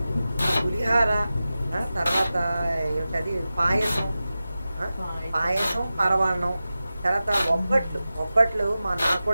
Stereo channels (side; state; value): both; inverted; correlation -0.94